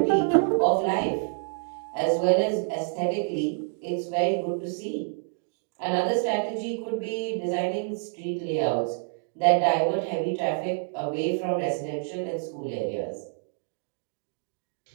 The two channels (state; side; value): silent; left; digital silence